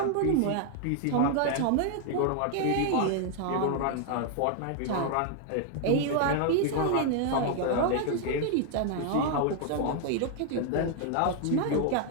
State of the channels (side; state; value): both; different; correlation 0.00